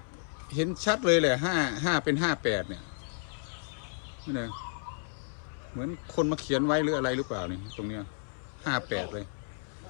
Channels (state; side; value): silent; right; 57 dB below the other